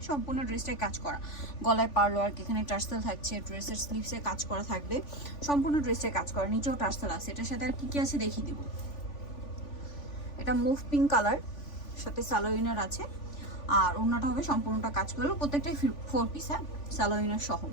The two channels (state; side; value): late; right; 3.5 ms